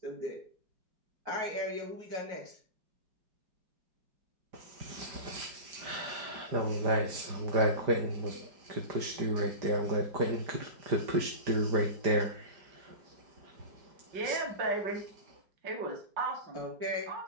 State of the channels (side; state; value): left; late; 5.0 ms